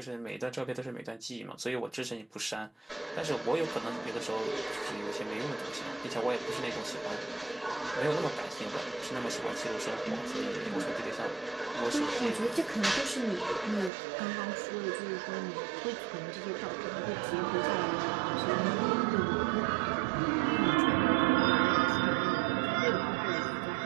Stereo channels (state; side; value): drops out; left; at 13.9 s